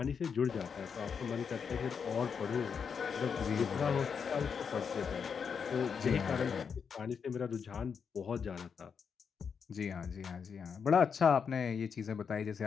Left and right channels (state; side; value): quieter; right; 6.4 dB